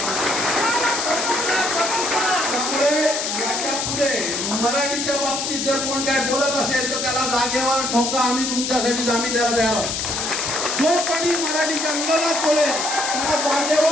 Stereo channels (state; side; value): noise; left; hiss, 2 dB below the sound